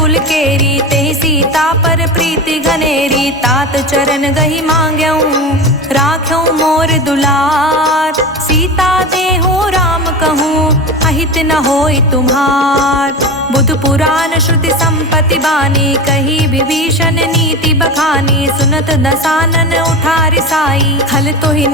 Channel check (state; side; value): normal; both; correlation 0.25